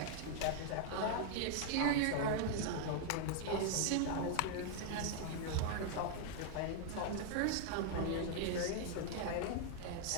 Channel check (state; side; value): different; both; correlation 0.00